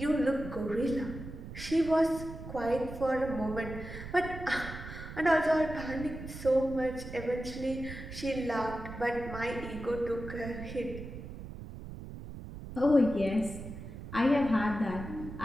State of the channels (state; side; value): noise; right; rumble, 11 dB below the sound